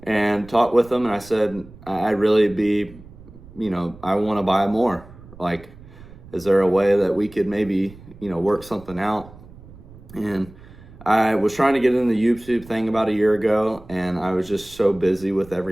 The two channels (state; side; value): noise; right; rumble, 20 dB below the sound